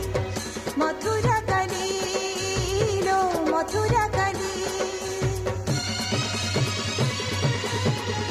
मथुरा काली लो मथुरा काली।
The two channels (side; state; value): both; identical; correlation 1.00